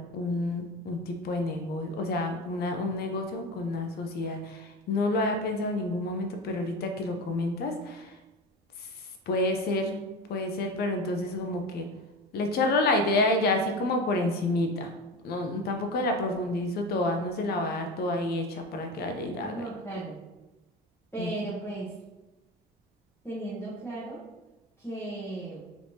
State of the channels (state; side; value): normal; both; correlation 0.28